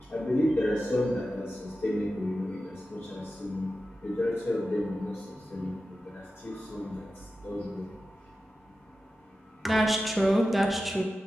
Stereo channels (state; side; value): normal; both; correlation 0.93